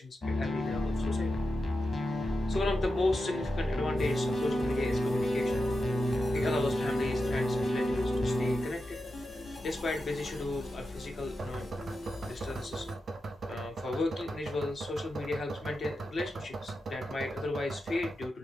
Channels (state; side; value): normal; both; correlation 0.89